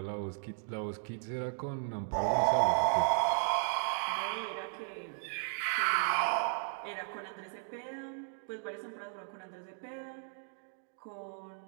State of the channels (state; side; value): silent; left; 54 dB below the other